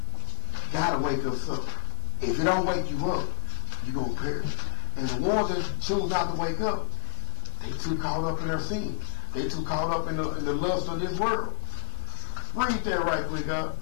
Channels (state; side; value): silent; right; digital silence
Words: got to wake us up. If it don't wake you up, you're going to perish. And the ones that choose not to wake up, they too caught up in their sin. They too caught up in the lust of this world. Read that right quick, God.